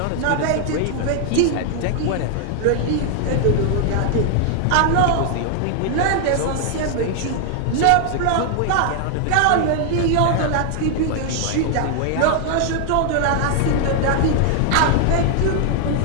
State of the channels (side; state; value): both; different; correlation 0.00